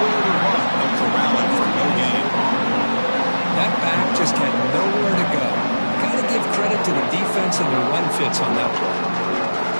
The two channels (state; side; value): inverted; both; correlation -1.00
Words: to run, no corralling for no gain. That back just had nowhere to go. Got to give credit to the defense and the run fits on that play.